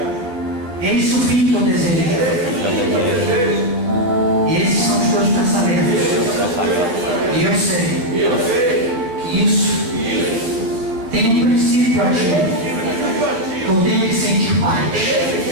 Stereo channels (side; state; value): left; late; 11 ms